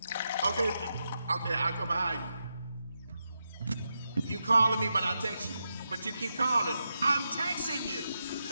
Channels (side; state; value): both; inverted; correlation -0.86